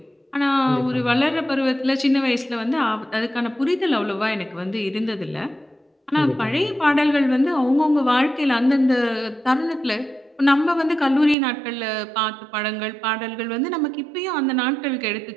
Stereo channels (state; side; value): drops out; left; at 11.4 s